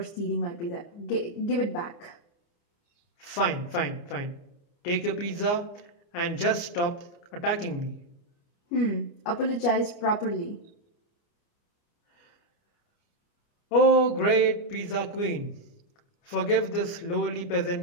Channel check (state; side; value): late; right; 29 ms